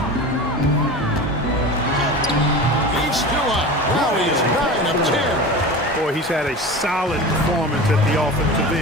He's still up. Now he's 9 of 10. Boy, he's had a solid performance at the offensive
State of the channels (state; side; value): normal; both; correlation 0.31